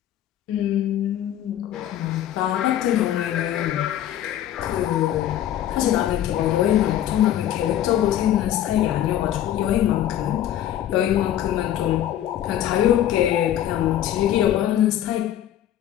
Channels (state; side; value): quieter; right; 11.7 dB